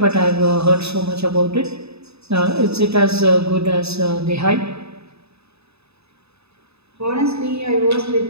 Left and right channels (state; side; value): late; left; 0.79 ms